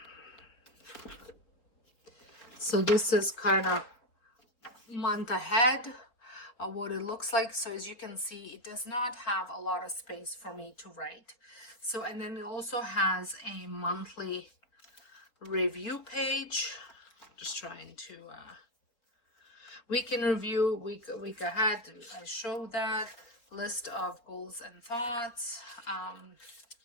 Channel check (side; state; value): right; late; 4.3 ms